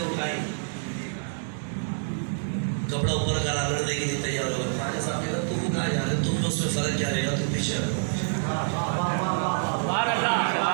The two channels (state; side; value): silent; left; digital silence